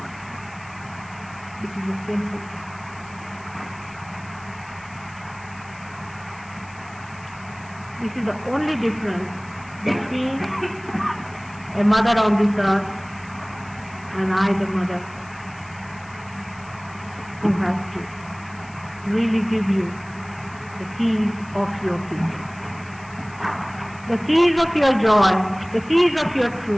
It is the same thing. This is the only difference between a mother on this earth and I, the mother, who has to really give you the keys of your future. The keys of your joy, the keys of your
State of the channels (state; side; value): noise; left; hiss, 24 dB below the sound